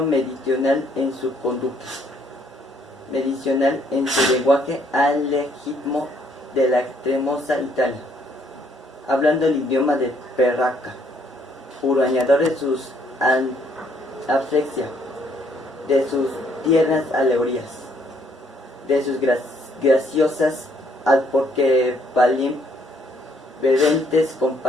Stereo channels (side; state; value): both; normal; correlation 0.67